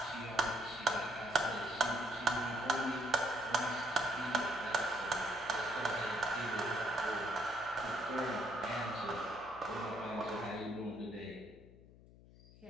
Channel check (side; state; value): left; noise; hum, 21 dB below the sound